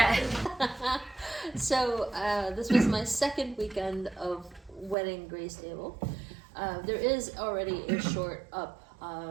So this was my second weekend of wedding Grace Stable. There is already a short up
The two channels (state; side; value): drops out; left; at 5.0 s